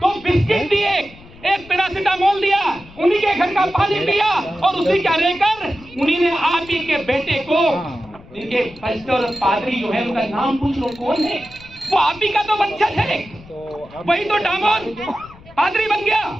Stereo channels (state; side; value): noise; left; rumble, 22 dB below the sound